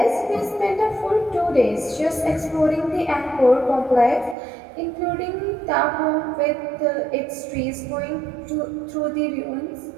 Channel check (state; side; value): drops out; left; at 4.4 s